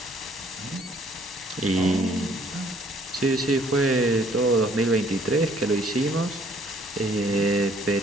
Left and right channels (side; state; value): both; normal; correlation 0.62